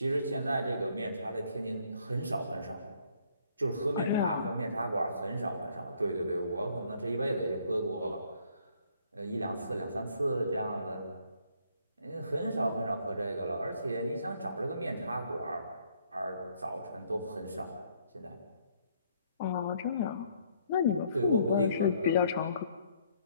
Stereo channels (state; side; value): inverted; both; correlation -0.66